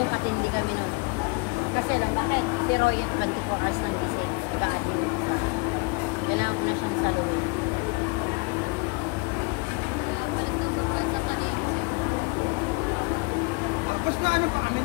katindi kami nun. Kasi lang, bakit? Si Roy at 24 hours lang kasi. Nag-admin. Kailangan ko na siyang saluhin. Tapos na ano pa kami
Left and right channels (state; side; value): quieter; right; 28.4 dB